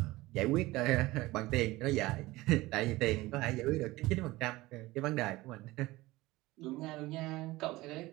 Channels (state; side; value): quieter; left; 19.3 dB